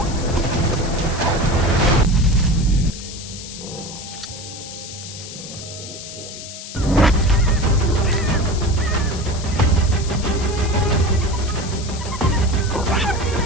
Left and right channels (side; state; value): left; noise; hiss, 12 dB below the sound